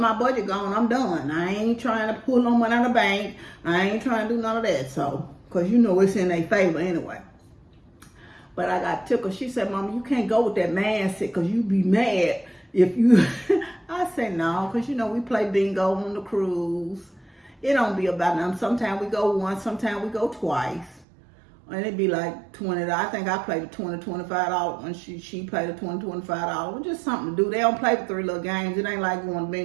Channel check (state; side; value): drops out; left; at 21.1 s